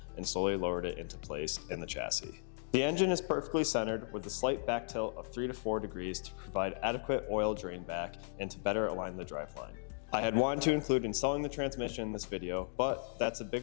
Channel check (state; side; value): silent; right; digital silence